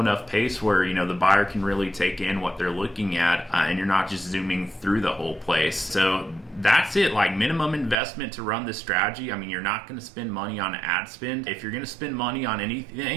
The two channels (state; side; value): drops out; left; at 8.0 s